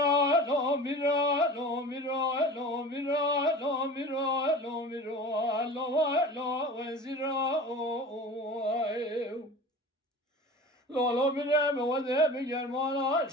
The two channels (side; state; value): both; normal; correlation 0.37